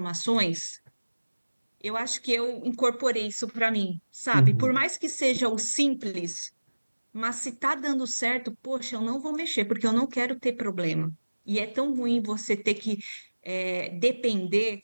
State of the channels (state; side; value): inverted; both; correlation -1.00